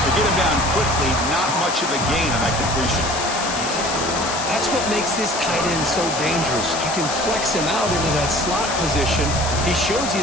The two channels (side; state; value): left; noise; hiss, 6 dB below the sound